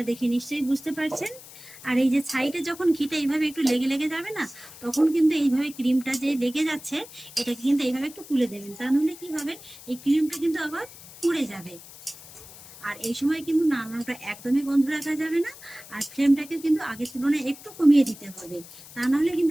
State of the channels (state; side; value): noise; left; hiss, 18 dB below the sound